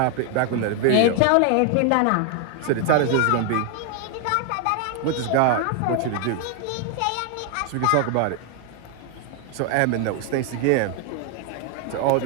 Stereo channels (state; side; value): different; both; correlation 0.00